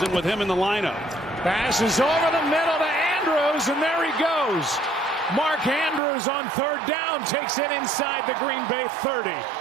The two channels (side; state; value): left; drops out; at 6.0 s